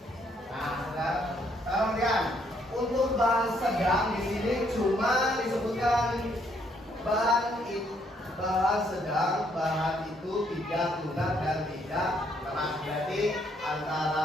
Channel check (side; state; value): both; normal; correlation 0.70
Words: Nah, sekarang lihat. Untuk bahan sedang di sini cuma disebutkan bahan sedang, bahan itu tidak lunak dan tidak keras. Berarti